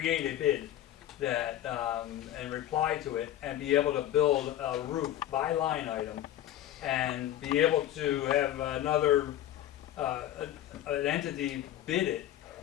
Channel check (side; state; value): right; quieter; 12.5 dB